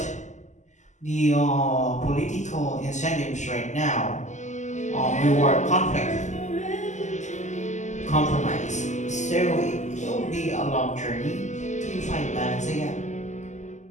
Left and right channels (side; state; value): right; late; 0.34 ms